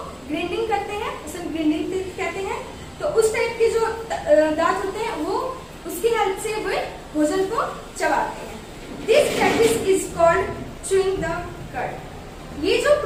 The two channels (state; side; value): identical; both; correlation 1.00